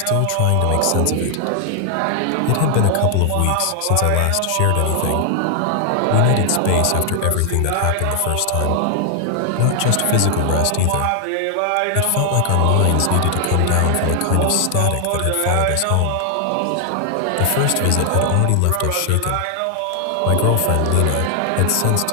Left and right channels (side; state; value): both; different; correlation 0.00